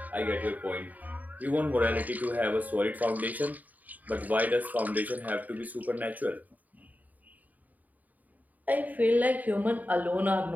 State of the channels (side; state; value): left; late; 0.078 ms